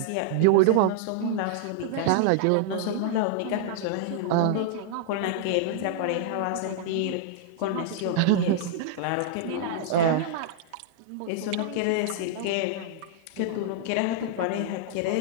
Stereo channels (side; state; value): both; different; correlation -0.01